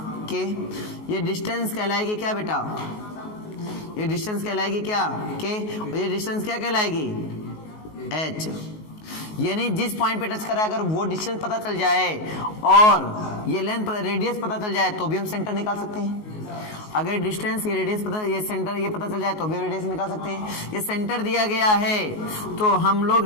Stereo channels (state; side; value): late; right; 19 ms